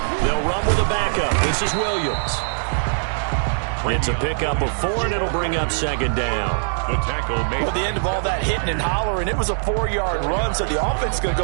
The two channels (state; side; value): silent; left; digital silence